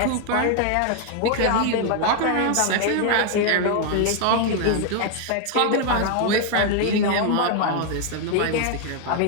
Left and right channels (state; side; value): different; both; correlation 0.00